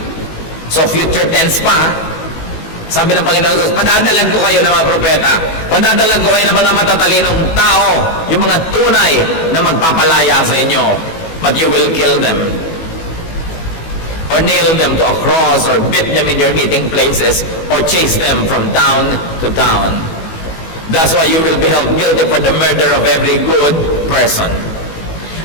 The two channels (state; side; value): late; right; 18 ms